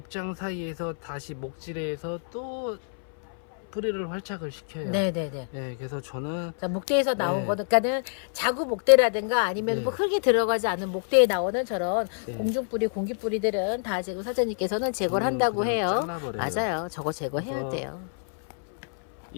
사이에서 다시 목질해서 또 뿌리를 활착을 시켜요. 네네네. 예, 그래서 저는 자, 목대에서 나온 네. 거니까는 자구 목대라든가 아니면 네. 뭐 흙이 들어가지 않은 목대에 나오는 저런 네. 공중뿌리, 공기뿌리들은 다 지금 사장님께서는 제거를 저는 한다고 그냥 해요. 잘라버려요. 맞아요. 저거 제거해야 그래서 돼요.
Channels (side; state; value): right; silent; 60 dB below the other